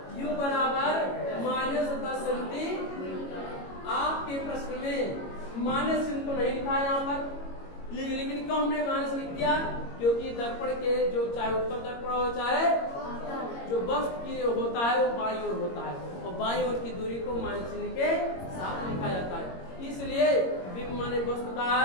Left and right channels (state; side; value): late; right; 22 ms